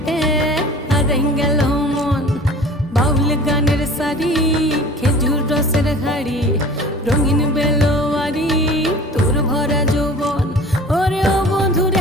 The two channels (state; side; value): normal; both; correlation 0.43